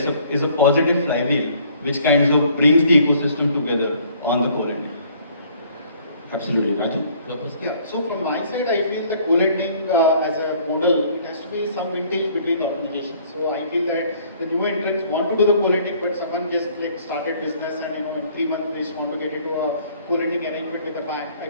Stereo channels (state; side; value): inverted; both; correlation -0.59